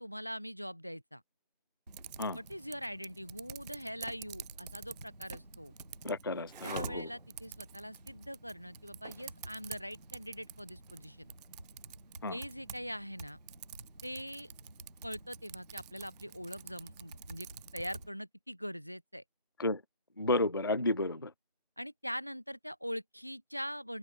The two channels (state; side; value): inverted; both; correlation -0.59